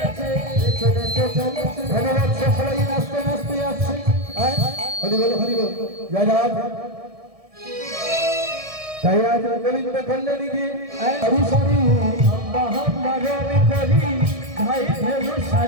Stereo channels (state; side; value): late; left; 1.6 ms